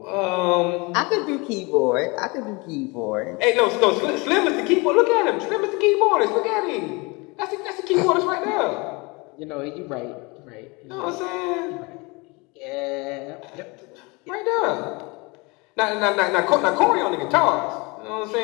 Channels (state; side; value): quieter; right; 27.2 dB